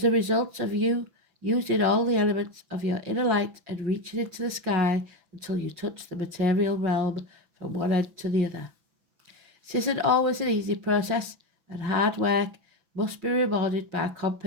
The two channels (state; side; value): late; left; 6.0 ms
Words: the result of you using all the elements of your inner light and reaching into the sky until you touch the material realm from one end to the other. This isn't always an easy process, and hard work must be rewarded by